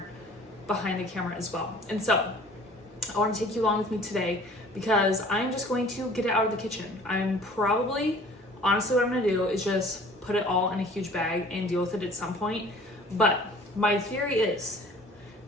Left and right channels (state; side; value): normal; both; correlation 0.49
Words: behind the camera as well. And so I want to take you along with me today because I'm just going to get it out of the kitchen. Honestly, what I'm going to do is just put it all in a huge bag and deal with it at some point. But my theory is,